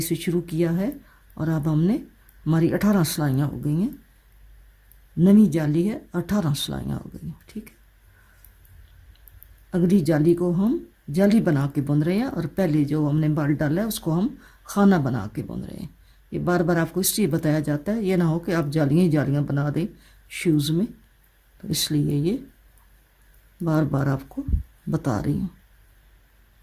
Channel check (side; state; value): both; identical; correlation 1.00